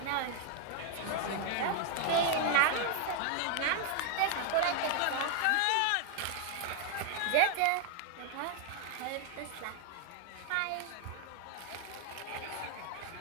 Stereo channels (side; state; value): both; different; correlation 0.00